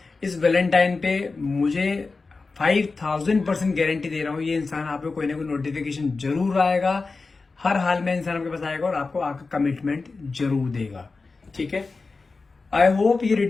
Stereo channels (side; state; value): right; quieter; 4.0 dB